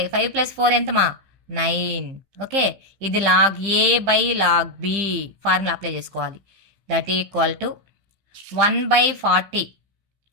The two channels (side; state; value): left; late; 15 ms